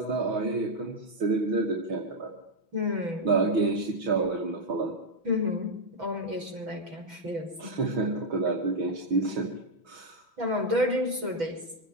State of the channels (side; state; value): left; late; 6.0 ms